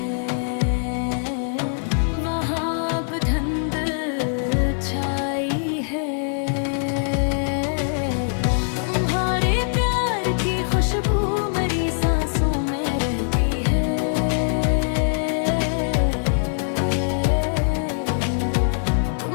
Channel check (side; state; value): right; silent; digital silence